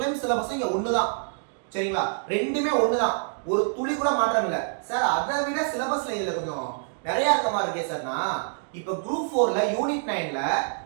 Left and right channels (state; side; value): silent; left; digital silence